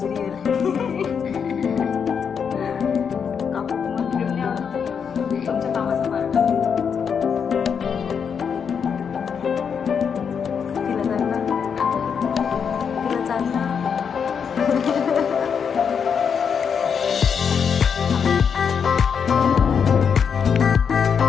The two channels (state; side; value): quieter; right; 6.8 dB